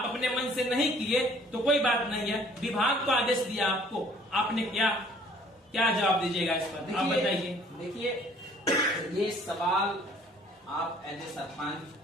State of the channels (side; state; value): both; normal; correlation 0.56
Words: अपने मन से नहीं किए तो कोई बात नहीं है, विभाग को आदेश दिया आपको, आपने क्या जवाब दीजिएगा इस पर? आप बताइए। देखिए, ये सवाल आप एज ए सरपंच,